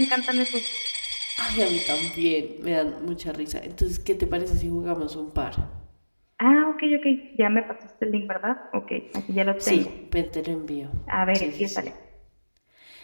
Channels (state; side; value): inverted; both; correlation -1.00